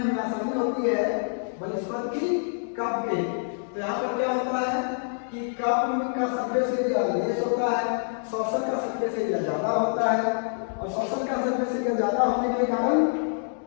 हमें आसानी होती है बनस्पत की कप के। तो यहाँ पर क्या होता है कि कप का सरफेस एरिया लेस होता है, सॉसर का सरफेस एरिया ज्यादा होता है, और सॉसर का सरफेस एरिया ज्यादा होने के कारण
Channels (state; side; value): silent; right; digital silence